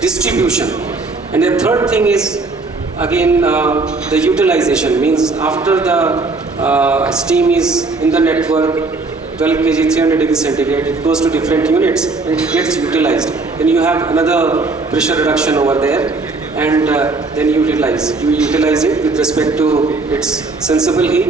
distribution, and the third thing is again the utilization, means after the steam is in the network, 12 kg, 300 degrees centigrade, it goes to different units and it gets utilized. Then you have another pressure reduction over there, and then you utilize it with respect to its sensible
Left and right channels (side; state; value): left; quieter; 3.7 dB